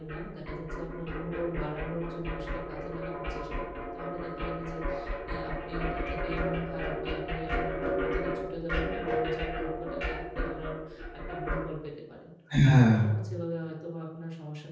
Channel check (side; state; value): both; identical; correlation 1.00